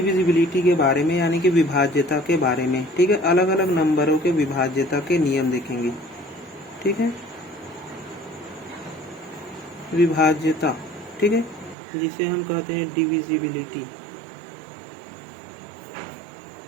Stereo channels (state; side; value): drops out; left; at 11.8 s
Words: के बारे में, यानी कि विभाज्यता के बारे में। ठीक है, अलग अलग नंबरों के विभाज्यता के नियम देखेंगे। ठीक है, विभाज्यता, ठीक है, जिसे हम कहते हैं डिविजिबिलिटी।